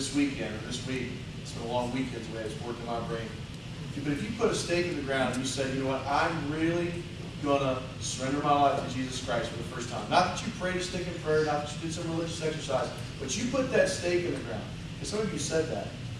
weekend or this week, it's been a long weekend the way it's working my brain. But if you put a stake in the ground and you said, you know what, I'm really going to surrender my life to Jesus Christ for the first time. Not that you prayed a stick in prayer, not that you did some religious exercise, but you put that stake in the ground. And some of you said that.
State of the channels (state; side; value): identical; both; correlation 1.00